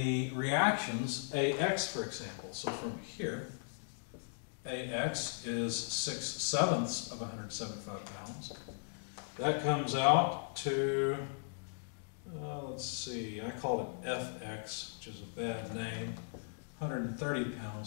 reactions, AX, for example. So from here, AX is 6/7 of 175 pounds. That comes out to, let's see, I call it FX, which is a bad name. 130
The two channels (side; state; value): right; silent; digital silence